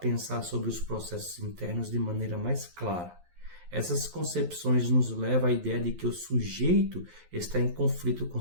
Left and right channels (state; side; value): late; left; 11 ms